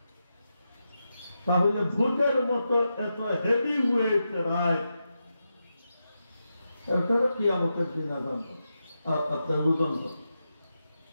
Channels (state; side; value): inverted; both; correlation -0.88